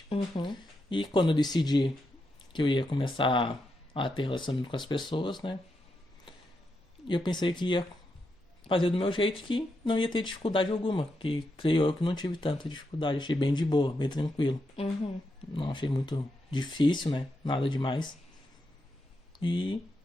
E quando eu decidi que eu ia começar a ter relacionamento com as pessoas, né? Eu pensei que ia fazer do meu jeito, que não ia ter dificuldade alguma. Que creio eu que não tive tanta dificuldade. Achei bem de boa, bem tranquilo. Não achei muito difícil, né? Nada demais. E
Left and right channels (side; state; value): both; normal; correlation 0.84